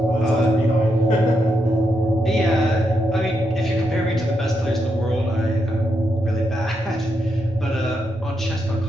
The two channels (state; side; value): normal; both; correlation 0.82